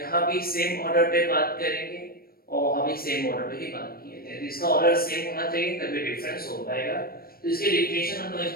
भी सेम ऑर्डर पे बात करेंगे और वहाँ भी सेम ऑर्डर पे ही बात किए थे। तो इसका ऑर्डर सेम होना चाहिए तभी डिफरेंस हो पाएगा। तो इसके डेफिनेशन हम लोग एक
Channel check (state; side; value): late; right; 0.44 ms